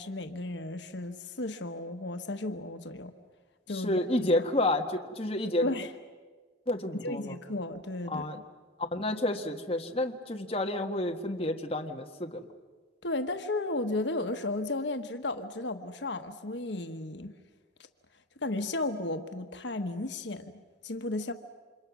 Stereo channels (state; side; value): normal; both; correlation 0.27